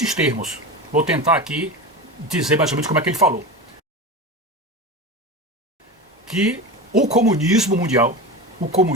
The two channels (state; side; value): normal; both; correlation 0.25